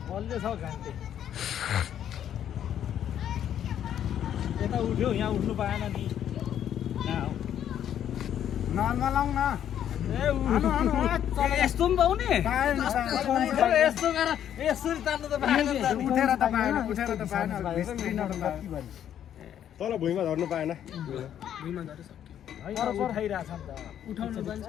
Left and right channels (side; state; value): right; quieter; 10.1 dB